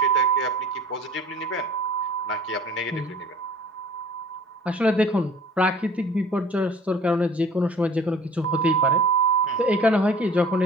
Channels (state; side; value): normal; both; correlation 0.47